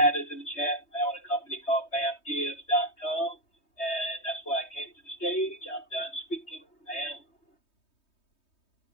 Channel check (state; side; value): late; right; 3.2 ms